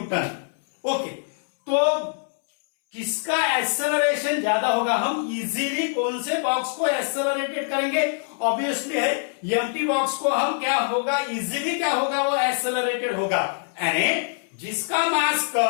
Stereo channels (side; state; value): right; silent; 63 dB below the other